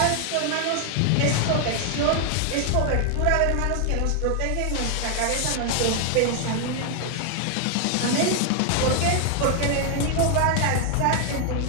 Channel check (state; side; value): different; both; correlation 0.00